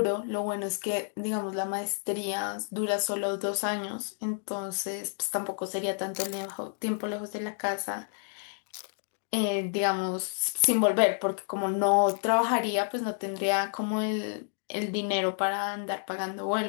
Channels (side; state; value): right; silent; digital silence